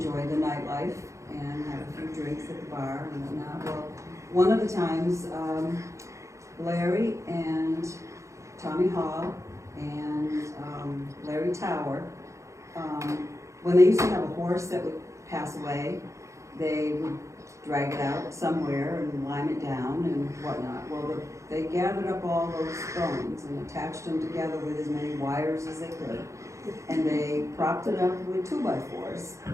the nightlife and have a few drinks at the bar and whatnot. Well, one of the times, Larry and Tommy Hall and Larry Tower, when they used to have a horse that would pass away, they would drag it out somewhere and lime it down and whatnot. Well, they gathered up all those stones and attached them together with as many wires as they could. And they propped it up with 2x4s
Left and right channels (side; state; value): left; late; 0.15 ms